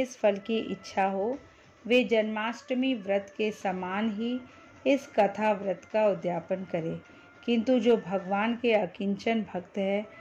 फल की इच्छा हो, वे जन्माष्टमी व्रत के समान ही इस कथा व्रत का उद्यापन करें। किंतु जो भगवान के अकिंचन भक्त हैं,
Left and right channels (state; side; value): identical; both; correlation 1.00